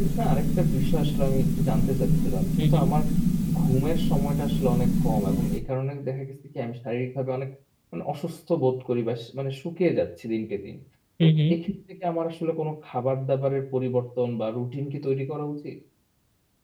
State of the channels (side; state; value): both; identical; correlation 1.00